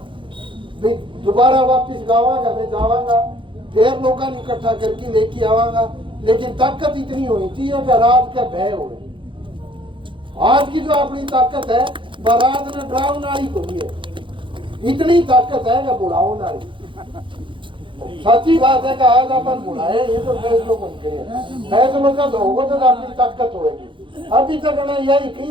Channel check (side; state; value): left; late; 0.24 ms